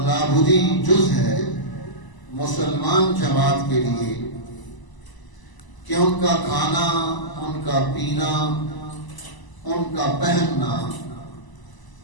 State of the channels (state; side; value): late; right; 1.0 ms